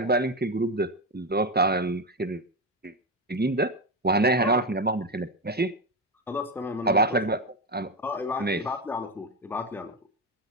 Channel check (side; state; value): both; normal; correlation 0.13